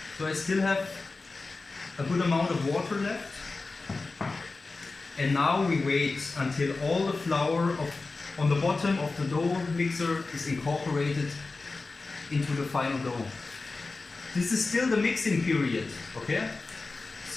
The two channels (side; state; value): right; quieter; 3.7 dB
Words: So I still have a good amount of water left. And now we wait until all the flour on the bottom of the dough mixer is incorporated into the final dough. This is still the mixing period, okay?